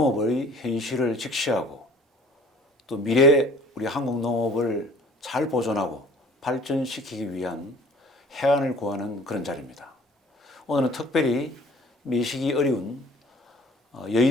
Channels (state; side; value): normal; both; correlation 0.51